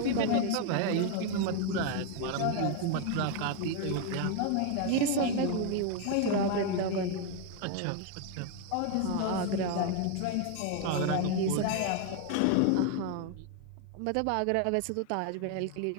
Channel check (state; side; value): different; both; correlation 0.01